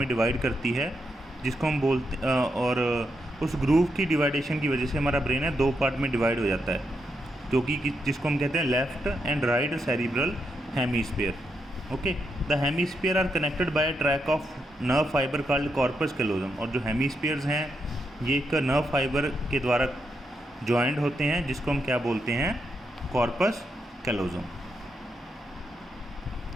डिवाइड करती है, जिसको हम बोलते और उस ग्रूव की डिवाइडेशन की वजह से हमारा ब्रेन है दो पार्ट में डिवाइड हो जाता है, जो कि जिसको हम कहते हैं left and right cerebral hemisphere. Okay, the hemisphere are connected by a track of nerve fibre called corpus callosum. और जो हेमीस्फीयर्स हैं ये एक नर्व फाइबर के द्वारा ज्वाइंट होते हैं, जिसको हम क्या बोलते हैं, corpus callosum.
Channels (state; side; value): normal; both; correlation 0.82